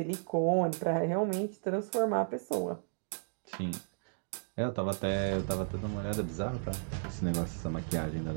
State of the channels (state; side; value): silent; left; digital silence